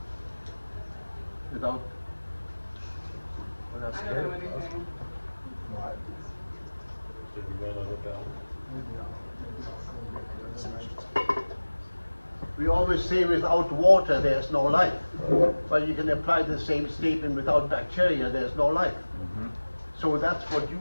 without. I don't know anything. We always say without water there's no life. But you can apply the same statement without bacteria there's no life. So that's what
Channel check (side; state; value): both; inverted; correlation -1.00